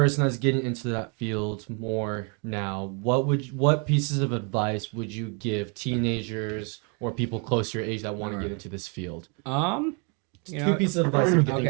that's getting into that field more now, what pieces of advice would you give teenagers or people close to your age that want to get into this field? You Two know, pieces of advice. If you can think okay,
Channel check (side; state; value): left; quieter; 36.6 dB